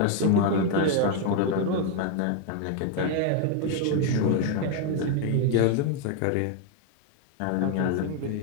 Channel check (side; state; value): both; different; correlation 0.01